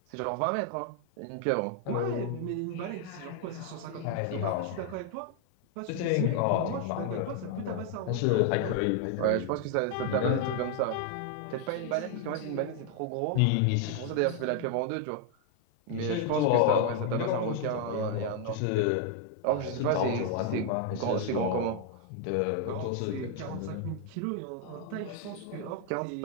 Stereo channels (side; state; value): both; different; correlation 0.00